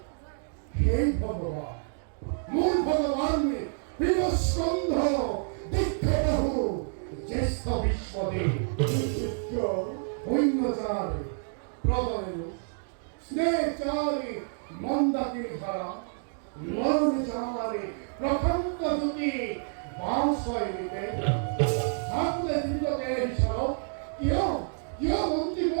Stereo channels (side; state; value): left; silent; digital silence